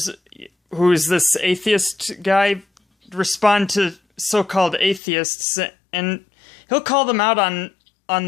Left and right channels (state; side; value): drops out; right; at 5.0 s